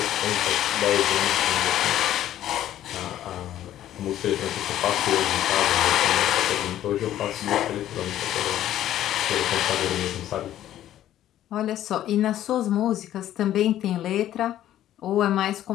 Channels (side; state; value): right; quieter; 12.4 dB